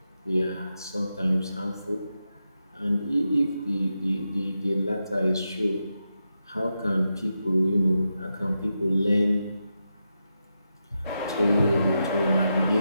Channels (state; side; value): inverted; both; correlation -0.87